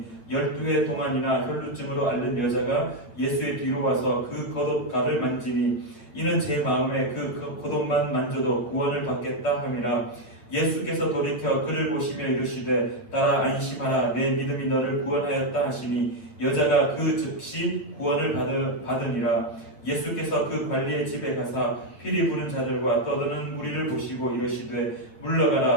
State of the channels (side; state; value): right; late; 8.6 ms